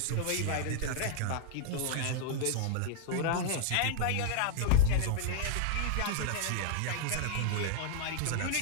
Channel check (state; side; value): different; both; correlation 0.00